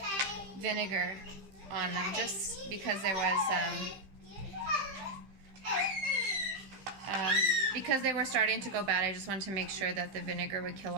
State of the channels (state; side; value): late; left; 15 ms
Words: vinegar on them, just because there was because they were starting to go bad. I just wanted to make sure that the vinegar would kill